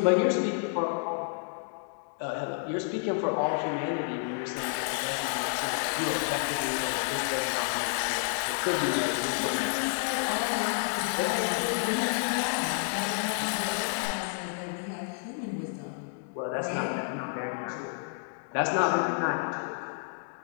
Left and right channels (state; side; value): silent; right; digital silence